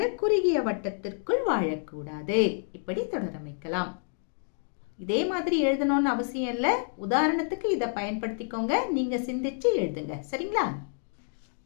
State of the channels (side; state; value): right; silent; 59 dB below the other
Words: குறுகிய வட்டத்திற்குள் வாழக்கூடாது. இப்படி தொடரமைக்கலாம். இதே மாதிரி எழுதணும்னு அவசியம் இல்ல. உதாரணத்துக்கு இதை பயன்படுத்திக்கோங்க. நீங்க சிந்திச்சு எழுதுங்க. சரிங்களா?